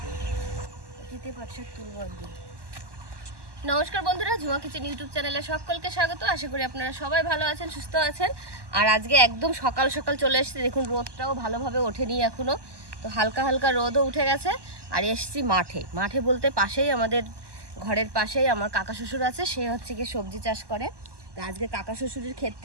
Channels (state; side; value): late; left; 1.2 ms